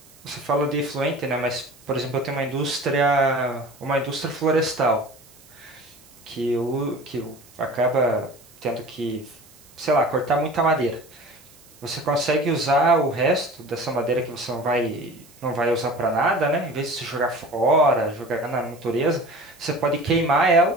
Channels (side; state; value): right; noise; hiss, 25 dB below the sound